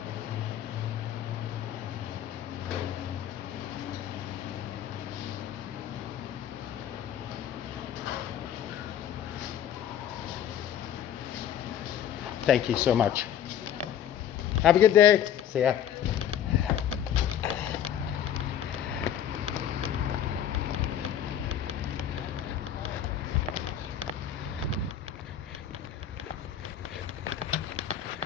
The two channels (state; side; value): quieter; right; 9.8 dB